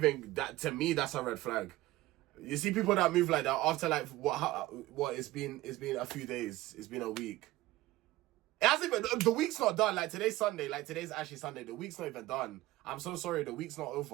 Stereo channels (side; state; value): left; quieter; 17.5 dB